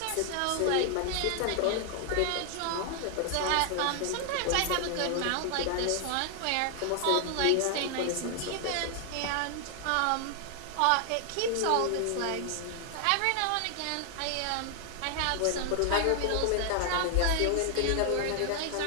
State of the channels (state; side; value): different; both; correlation 0.00